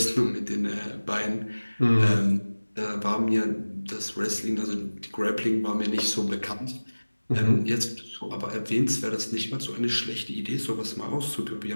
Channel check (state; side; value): inverted; both; correlation -1.00